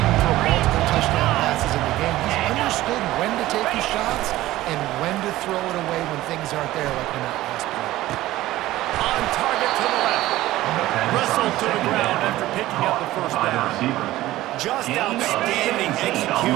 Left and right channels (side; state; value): left; quieter; 16.1 dB